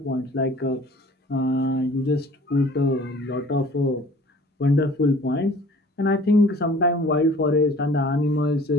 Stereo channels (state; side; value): normal; both; correlation 0.50